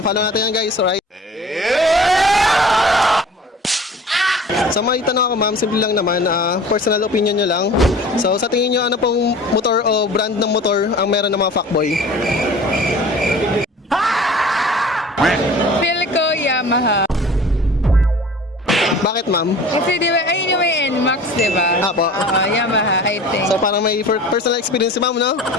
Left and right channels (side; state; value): both; normal; correlation 0.43